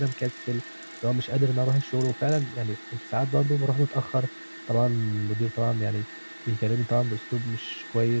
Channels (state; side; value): inverted; both; correlation -1.00